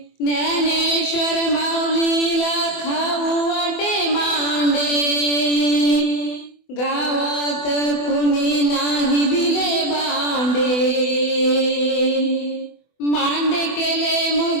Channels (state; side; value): late; right; 24 ms